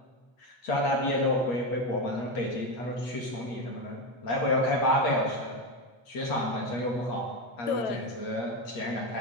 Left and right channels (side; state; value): right; late; 8.4 ms